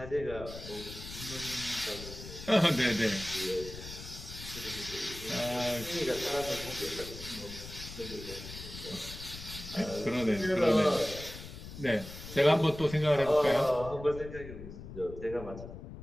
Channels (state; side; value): noise; left; rumble, 12 dB below the sound